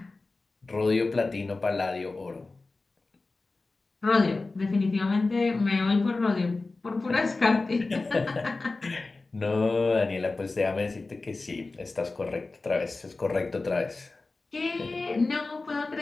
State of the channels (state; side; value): quieter; right; 3.5 dB